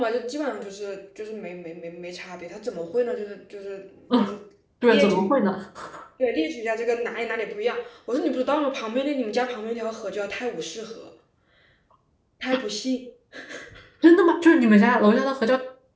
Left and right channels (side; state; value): both; identical; correlation 1.00